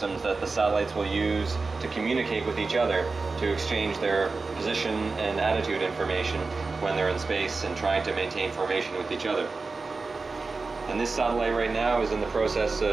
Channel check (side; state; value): left; quieter; 4.0 dB